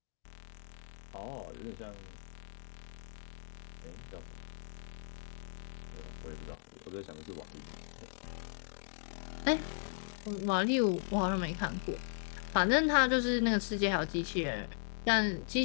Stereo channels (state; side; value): silent; right; digital silence